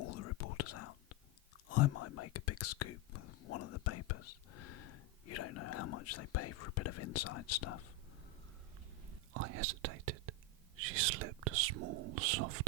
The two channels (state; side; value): normal; both; correlation 0.08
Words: the reporters out. I might make a big scoop with one of the papers. You don't know how much they pay for a bit of inside stuff. I hesitated. She slipped a small, soft